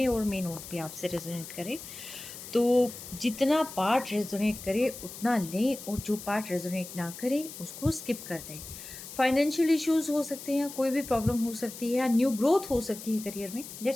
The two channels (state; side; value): noise; left; hiss, 12 dB below the sound